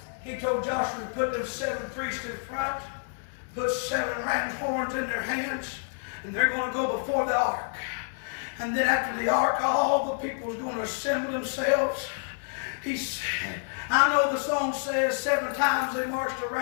He told Joshua to put those 7 priests in front, put 7 ram horns in their hands, And they're going to go before the ark. And then after the ark, all the people is going to assemble themselves. He said, I know the song says 7 times they marched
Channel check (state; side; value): silent; right; digital silence